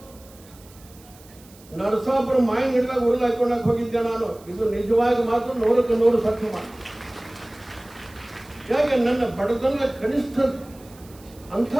ನರಸಾಪುರ ಮಾಯಿನ ಹಿಡಿದಾಗ ಉರುಳು ಹಾಕೊಂಡಾಗ ಹೋಗಿದ್ದೆ ನಾನು. ಇದು ನಿಜವಾಗಿ ಮಾತ್ರ 100ಕ್ಕೆ 100 ಸತ್ಯ ಮಾತು. ಯಾಕೆ ನನ್ನ ಬಡತನ ಕನಿಷ್ಠ ಅಂಥ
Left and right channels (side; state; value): right; noise; hiss, 25 dB below the sound